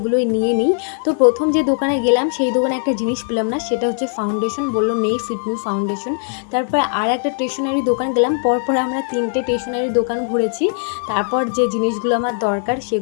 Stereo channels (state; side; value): silent; right; digital silence